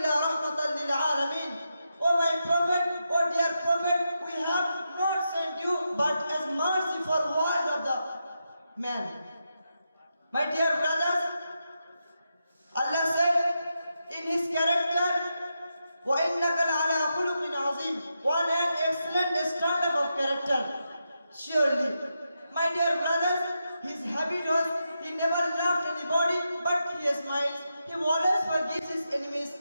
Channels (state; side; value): inverted; both; correlation -0.86